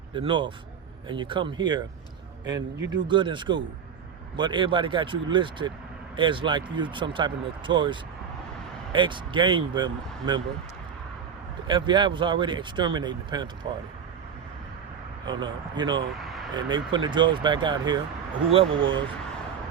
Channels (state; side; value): quieter; left; 7.4 dB